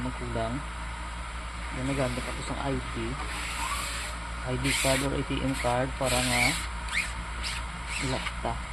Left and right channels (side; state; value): both; identical; correlation 1.00